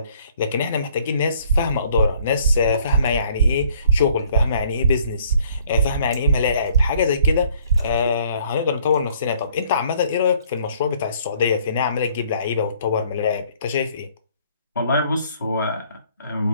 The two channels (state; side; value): inverted; both; correlation -0.61